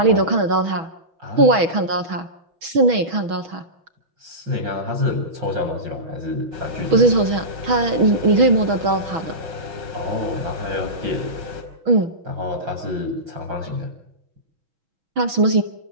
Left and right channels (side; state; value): left; late; 6.2 ms